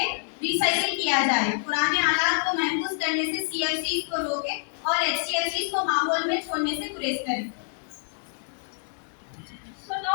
रिसाइकिल किया जाए। पुराने आलात को महफूज करने से सीएफसीज को रोकें और एचसीएफसीज को माहौल में छोड़ने से गुरेज करें।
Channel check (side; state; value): right; silent; digital silence